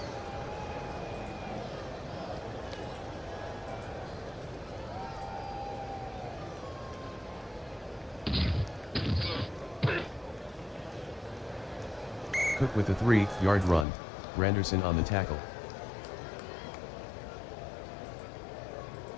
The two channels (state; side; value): drops out; right; at 13.9 s